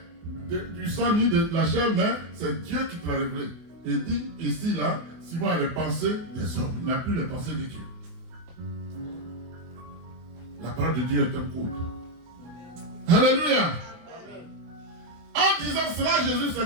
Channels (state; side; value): late; left; 24 ms